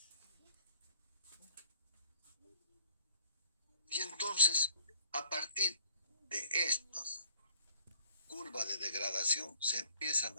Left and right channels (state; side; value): inverted; both; correlation -0.57